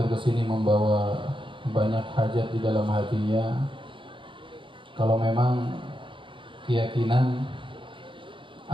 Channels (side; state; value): left; late; 0.25 ms